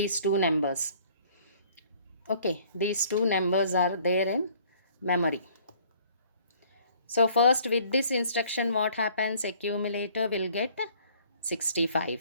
two numbers. Okay, these two numbers are there in memory. So first with this instruction what happens? Accumulator will get 65.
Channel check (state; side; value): inverted; both; correlation -0.57